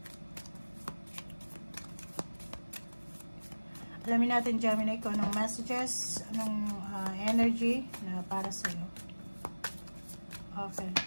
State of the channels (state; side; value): inverted; both; correlation -1.00